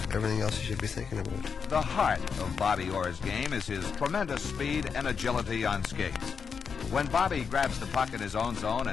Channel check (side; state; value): right; quieter; 6.1 dB